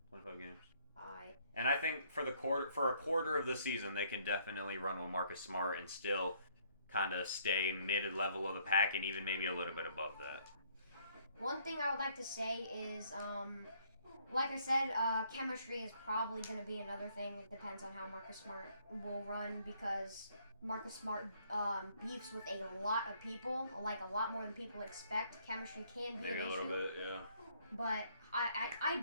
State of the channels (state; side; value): inverted; both; correlation -0.65